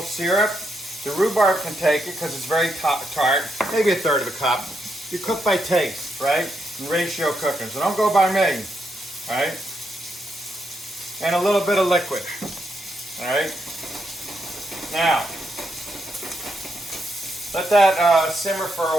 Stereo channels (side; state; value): both; normal; correlation 0.80